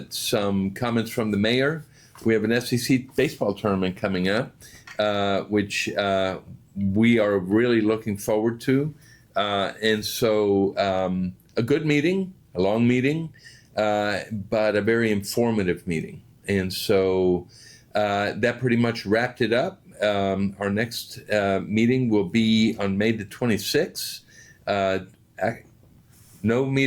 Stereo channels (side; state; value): both; identical; correlation 1.00